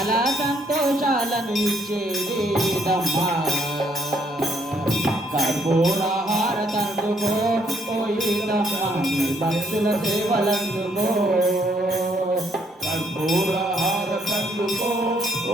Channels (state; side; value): normal; both; correlation 0.69